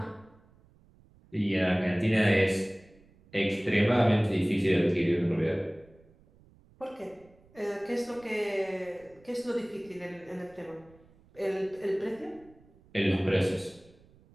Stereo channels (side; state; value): right; noise; rumble, 28 dB below the sound